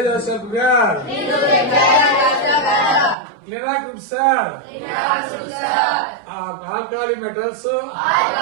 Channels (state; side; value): drops out; left; at 3.2 s